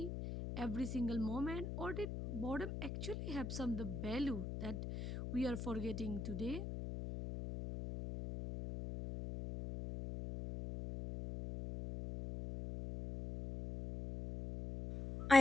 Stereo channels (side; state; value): left; noise; hum, 5 dB below the sound